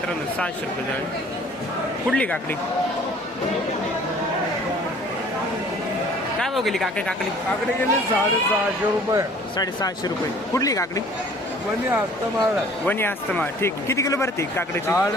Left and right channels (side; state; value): both; normal; correlation 0.52